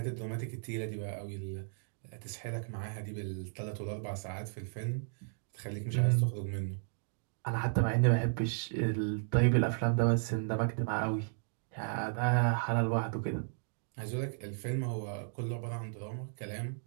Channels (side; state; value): left; silent; digital silence